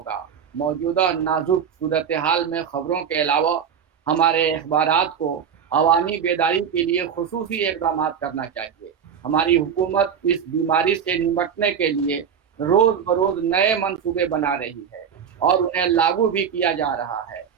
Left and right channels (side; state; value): left; quieter; 7.6 dB